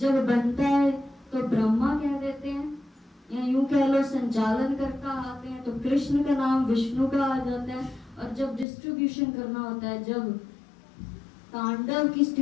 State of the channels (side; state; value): right; drops out; at 8.7 s